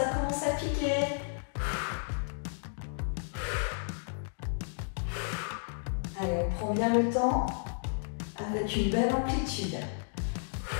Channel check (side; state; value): right; silent; digital silence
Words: commence à piquer. Allez, on prend bien le temps avec une belle amplitude.